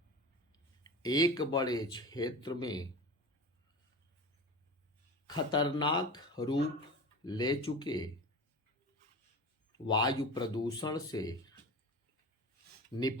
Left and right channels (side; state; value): both; normal; correlation 0.31